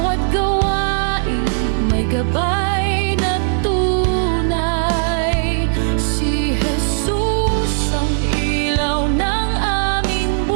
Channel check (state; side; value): silent; left; digital silence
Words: gawain may gabay na tunay, si Jesus ang ilaw ng aming